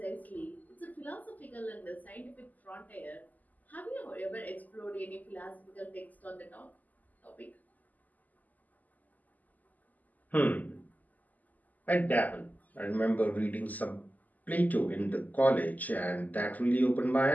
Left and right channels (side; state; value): right; late; 0.080 ms